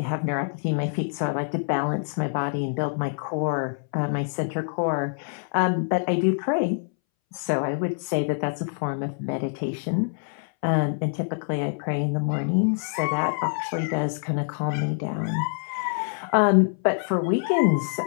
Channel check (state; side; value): silent; right; 61 dB below the other